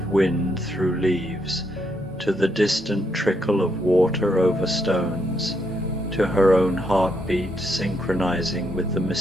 wind through leaves, to the distant trickle of water over stones, to her own heartbeat synchronizing with the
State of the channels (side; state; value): both; normal; correlation 0.77